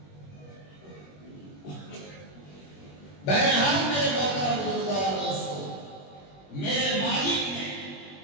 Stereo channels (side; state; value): right; late; 21 ms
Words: بہرحال میرے محترم بزرگوں اور دوستوں، میرے مالک نے،